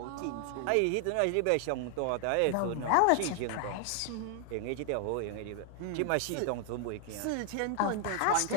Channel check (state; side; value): different; both; correlation 0.00